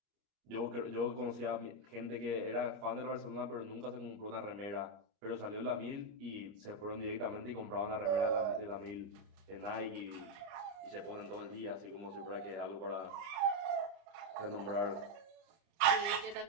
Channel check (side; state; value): left; late; 30 ms